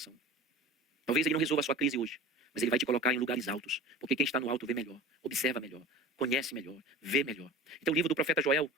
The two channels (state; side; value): normal; both; correlation 0.36